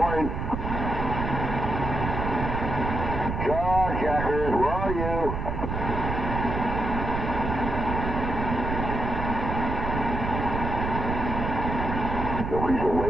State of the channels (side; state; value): right; noise; rumble, 3 dB below the sound